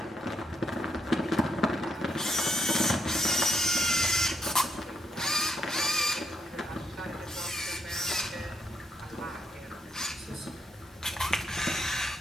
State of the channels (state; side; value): normal; both; correlation 0.76